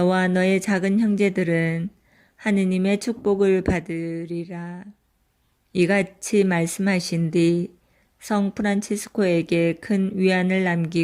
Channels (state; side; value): identical; both; correlation 1.00